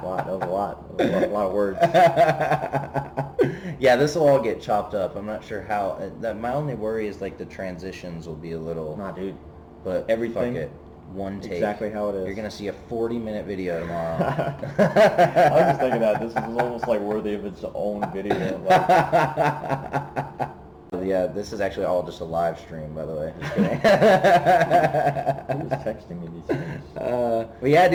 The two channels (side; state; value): both; identical; correlation 1.00